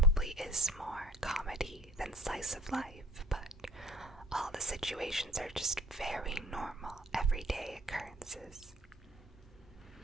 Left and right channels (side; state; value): both; normal; correlation 0.49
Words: is more comedy than slice of life, but all the situations are just very normal, everyday occurrences.